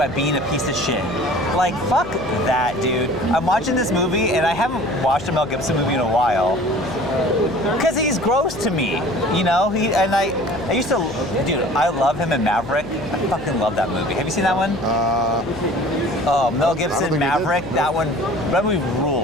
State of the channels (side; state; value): left; noise; hum, 13 dB below the sound